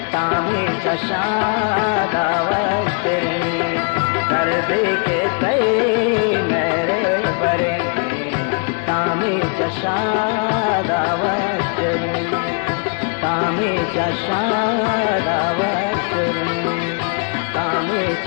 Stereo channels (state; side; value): quieter; right; 35.8 dB